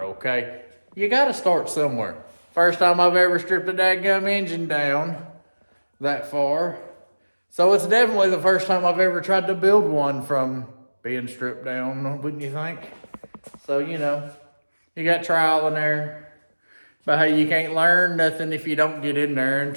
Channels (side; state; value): both; inverted; correlation -1.00